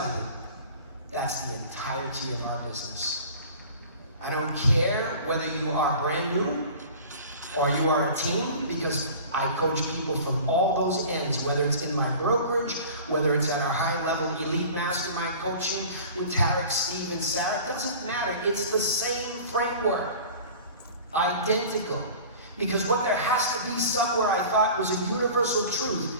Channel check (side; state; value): both; inverted; correlation -0.41